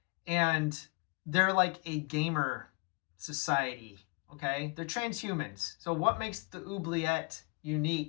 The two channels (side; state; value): right; quieter; 32.3 dB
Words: And they're like a gamer society, okay? They're transhumans. So what makes the Oubliette